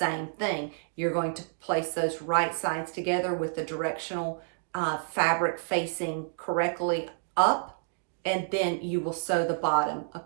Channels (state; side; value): silent; left; digital silence